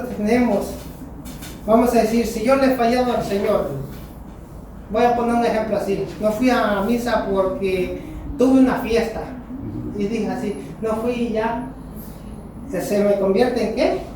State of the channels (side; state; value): both; identical; correlation 1.00